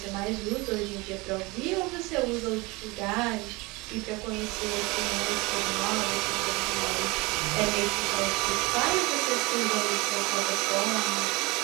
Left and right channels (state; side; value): quieter; left; 24.5 dB